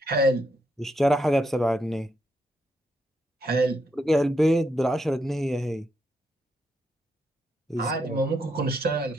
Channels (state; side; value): normal; both; correlation 0.79